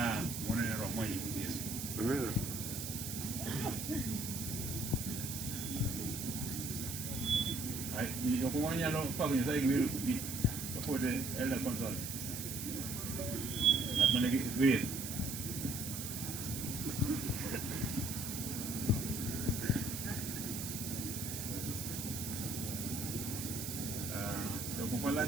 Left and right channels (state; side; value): noise; right; hiss, 5 dB below the sound